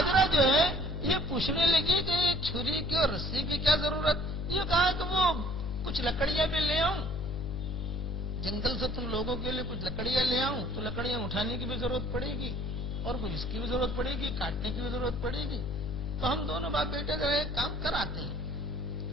جو ہے یہ پوچھنے لگی کہ چھری کی اور رسی کی کیا ضرورت؟ یہ کہا کہ وہ کچھ لکڑیاں بھی لے آؤں، جنگل سے تم لوگوں کے لیے کچھ لکڑیاں لے آؤں تو لکڑیاں اٹھانے کی بھی ضرورت پڑے گی اور کچھ اس کی بھی ضرورت پڑے گی، کاٹنے کی بھی ضرورت پڑے گی، تو ہم دونوں باپ بیٹے جو ہے کام کر آتے ہیں۔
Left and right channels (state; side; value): noise; left; hum, 3 dB below the sound